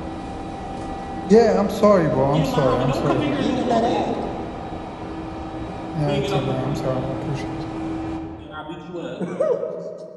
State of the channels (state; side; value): identical; both; correlation 1.00